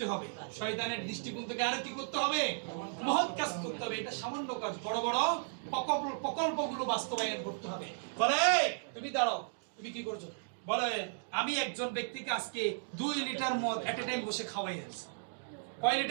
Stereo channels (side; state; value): left; silent; digital silence